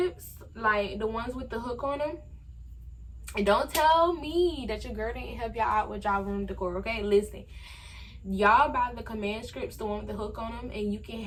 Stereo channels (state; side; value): identical; both; correlation 1.00